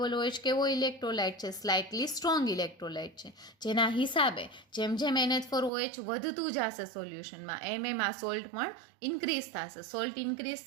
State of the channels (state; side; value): drops out; left; at 5.7 s